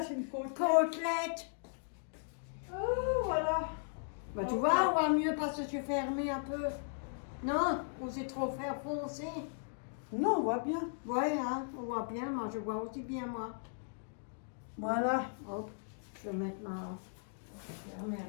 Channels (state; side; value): silent; right; digital silence